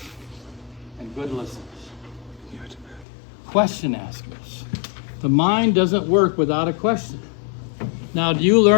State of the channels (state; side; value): drops out; right; at 3.1 s